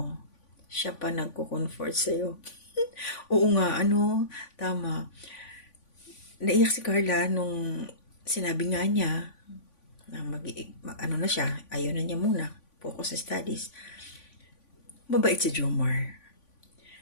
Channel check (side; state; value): right; late; 3.5 ms